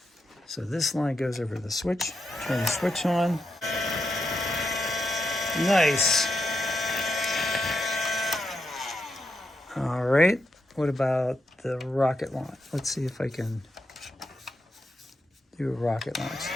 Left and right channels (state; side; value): normal; both; correlation 0.84